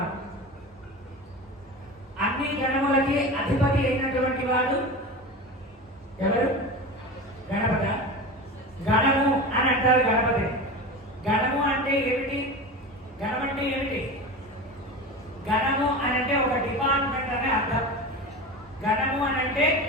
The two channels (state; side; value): normal; both; correlation 0.28